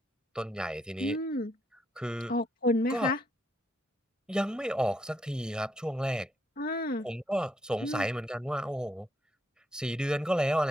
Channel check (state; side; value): normal; both; correlation 0.75